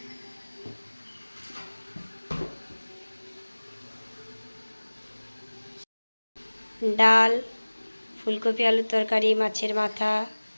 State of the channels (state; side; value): inverted; both; correlation -1.00